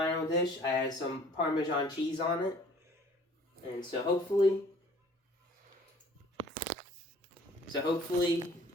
dish. I add some Parmesan cheese on it. And so hopefully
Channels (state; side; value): normal; both; correlation 0.53